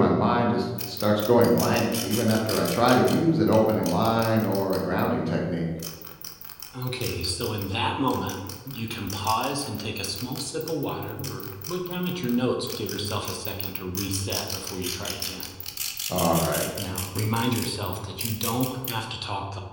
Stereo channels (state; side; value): identical; both; correlation 1.00